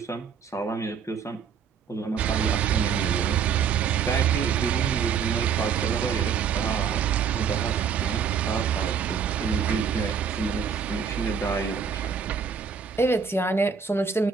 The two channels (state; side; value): quieter; left; 6.7 dB